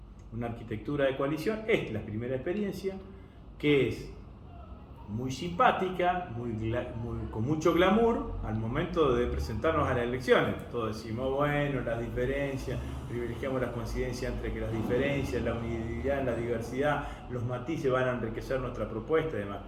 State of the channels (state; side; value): identical; both; correlation 1.00